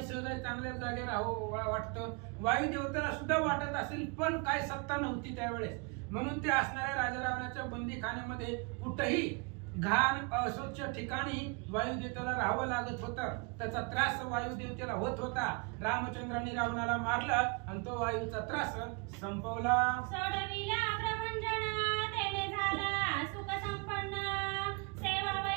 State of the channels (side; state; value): left; quieter; 32.4 dB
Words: सहज चांगल्या जागे राहावं वाटतं, वायू देवतेला सुद्धा वाटत असेल पण काय सत्ता नव्हती त्यावेळेस. म्हणून ते असणाऱ्या राजा रावणाच्या बंदीखान्यामध्ये कुठेही घाण अस्वच्छ ठिकाणी वायुदेवतेला राहावं लागत होतं. त्याचा त्रास वायुदेवतेला होत होता. रामचंद्रांनी रावणाला मारलं आणि तो वायूचा त्रास संपवला. सोडविला प्रभंजन तेने झाला सुख संपन्न